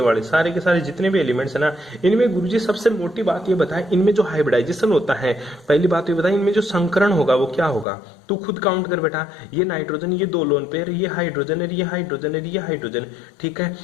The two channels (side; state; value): right; drops out; at 7.9 s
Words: वाले सारे के सारे जितने भी एलिमेंट्स है ना, इनमें गुरुजी सबसे मोटी बात ये बताए, इनमें जो हाइब्रिडाइजेशन होता है, पहली बात ये बताए, इनमें जो संकरण होगा वो क्या होगा? तू खुद काउंट कर बेटा, ये नाइट्रोजन, ये 2 लोन पेयर, ये हाइड्रोजन है, ये हाइड्रोजन है, ये हाइड्रोजन। ठीक है,